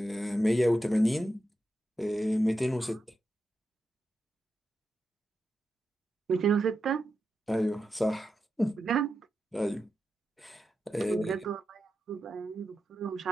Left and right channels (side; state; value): both; normal; correlation 0.89